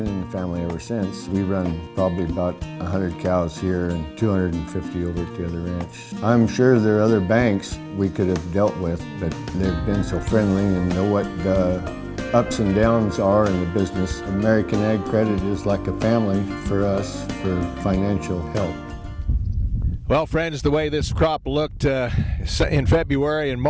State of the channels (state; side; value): identical; both; correlation 1.00